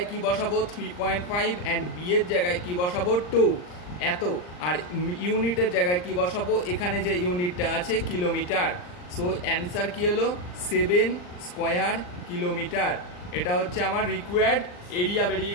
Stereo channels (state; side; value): late; right; 39 ms